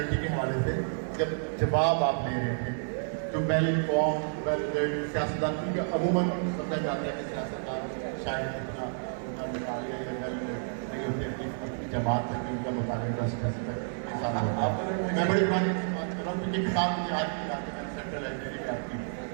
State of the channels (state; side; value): silent; left; 55 dB below the other